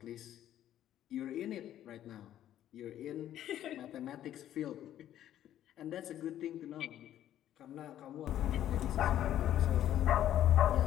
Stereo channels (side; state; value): right; quieter; 11.7 dB